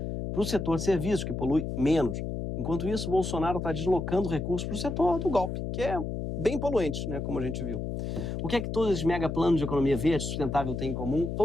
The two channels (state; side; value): noise; left; hum, 4 dB below the sound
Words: para o setor de serviços, que polui menos. Enquanto isso, Bolsonaro está deslocando recursos para o setor do golpe, que é bem poluente, né, como a gente viu. O que é que todos esses mega planos de economia verde sustentável têm em comum?